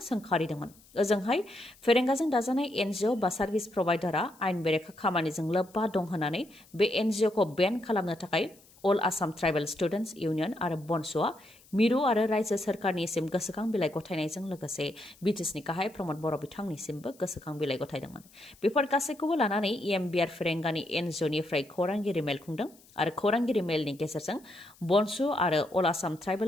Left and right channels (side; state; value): left; noise; hiss, 27 dB below the sound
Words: ओजोंहाय फेरेंगाजों दाजानाय NGO बा सार्भिस प्रभाइडारआ आयेन बेरेखा खामानिजों लोब्बा दं होननानै बे NGOखौ बेन खालामनो थाखाय अल आसाम ट्राइबेल स्टुडेन्टस इउनियन आरो बनस'आ मिरु आरो रायजो सोरखारनिसिम गोसोखां बिलाइ गथायनायजों लोगोसे बिटिसिनि गाहाय प्रमद बर' बिथांनिसिमबो गोसोखां बिलाइ गथायदोंमोन। बेफोर गासैखौबो लानानै बियार फेरेंगानि NGOनिफ्राय खौरांगिरि मेल खुंदों आरो खौरांगिरि मेलनि गेजेरजों बनस' आरो अल आसाम